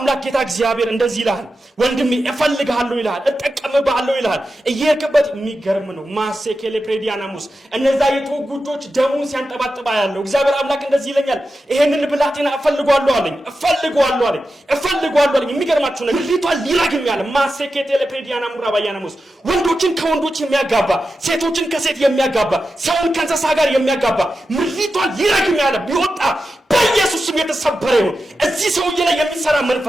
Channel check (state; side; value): normal; both; correlation 0.91